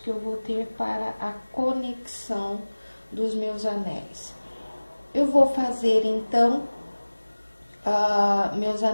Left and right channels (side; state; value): both; inverted; correlation -1.00